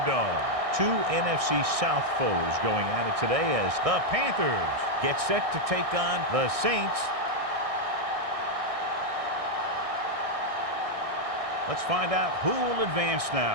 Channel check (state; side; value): late; left; 1.6 ms